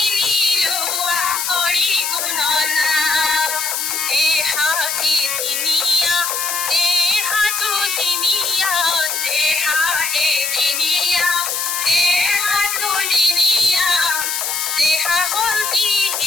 লোৱা হৰি গুণনা দেহাটি দিনিয়া দেহাটো দিনিয়া দেহা এদিনিয়া দেহাটো দিনিয়া দেহা হ'ল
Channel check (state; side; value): noise; left; hiss, 2 dB below the sound